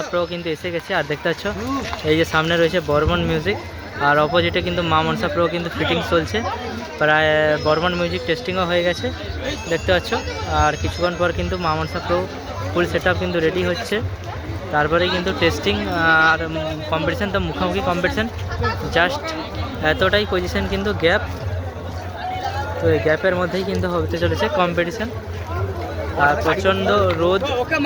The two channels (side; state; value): both; identical; correlation 1.00